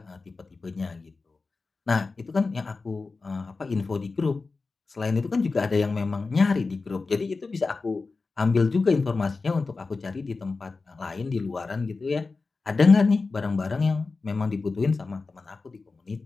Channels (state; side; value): quieter; right; 4.0 dB